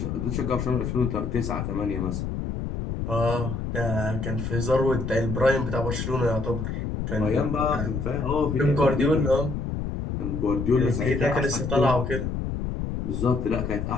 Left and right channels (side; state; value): left; noise; rumble, 3 dB below the sound